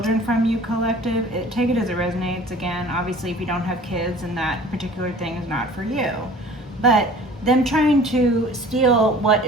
from you, collective, take it as it resonates. Again, obviously if you don't have kids and that particular thing is not for you, but them trying to steal what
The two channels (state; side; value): normal; both; correlation 0.47